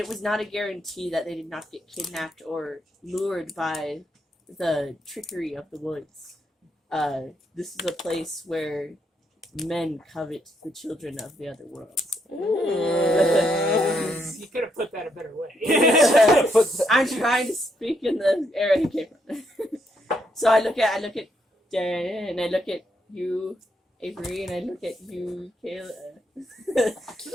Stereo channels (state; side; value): normal; both; correlation 0.77